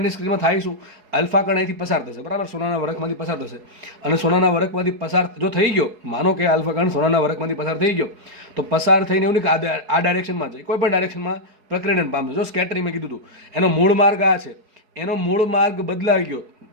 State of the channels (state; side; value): late; left; 4.7 ms